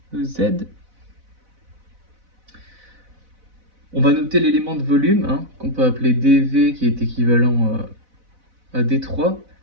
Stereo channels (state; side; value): late; left; 4.0 ms